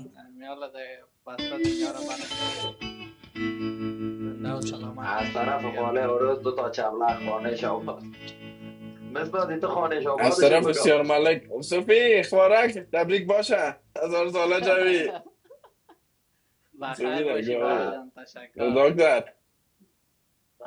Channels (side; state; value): both; identical; correlation 1.00